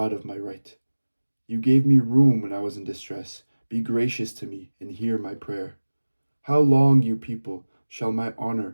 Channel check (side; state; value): both; inverted; correlation -1.00